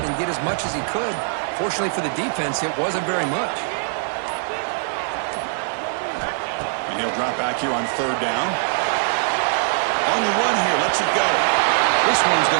get as much as he could. Fortunately for the defense, it wasn't very much. And he'll drop back here on third down. On the run here, lets it go. This one's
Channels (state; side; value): silent; left; digital silence